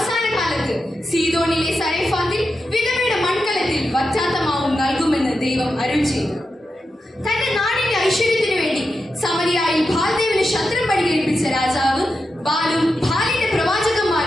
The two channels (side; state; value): both; normal; correlation 0.88